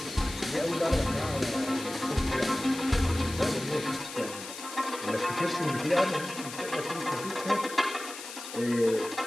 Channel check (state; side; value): noise; left; hiss, 11 dB below the sound